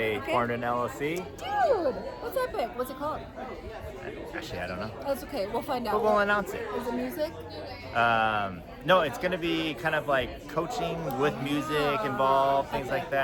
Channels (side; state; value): both; identical; correlation 1.00